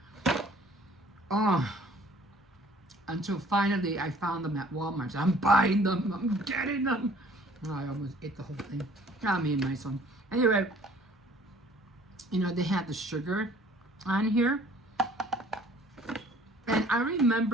Until finally I found them at Walmart. So I'm buying them, I'm getting them. Oh, I almost ate the whole thing. Not me and my son. Anyway, you know, they had the sugar on here. And I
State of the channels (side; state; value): both; normal; correlation 0.54